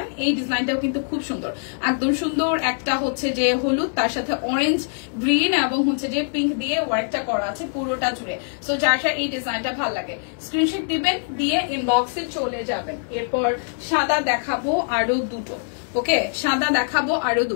এই ডিজাইনটাও কিন্তু খুব সুন্দর, একদম সুন্দর। একটা হচ্ছে যে হলুদ, তার সাথে অরেঞ্জ, গ্রিন এবং হচ্ছে যে পিঙ্ক দিয়ে ওয়ার্কটা করা আছে পুরোটা জুড়ে। সো যার এই ডিজাইনটা ভালো লাগে স্ক্রিনশট দিবেন, দিয়ে ইনবক্সে চলে যাবেন। এরপর সাদা দেখাবো আরো দুটো, ওকে সাদা দেখাবো আরো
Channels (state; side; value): silent; right; digital silence